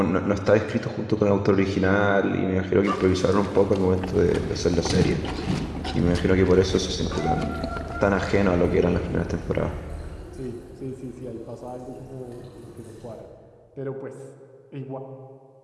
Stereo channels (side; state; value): both; identical; correlation 1.00